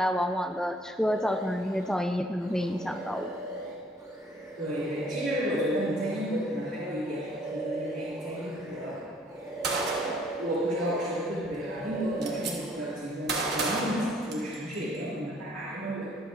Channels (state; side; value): normal; both; correlation 0.61